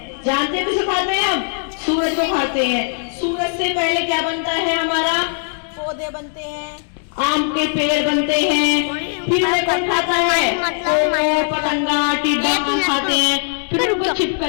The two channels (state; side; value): silent; right; 59 dB below the other